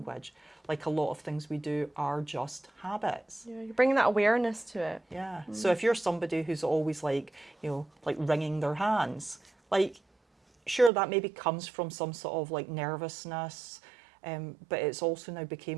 Like a lot of things we do are just habits. Yeah, you're bringing that awareness to it. Yeah. So if you're somebody who's always like, you know, like wringing their hands, like, sure, that maybe comes from some sort of like nervousness, but it's also now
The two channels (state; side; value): drops out; left; at 10.9 s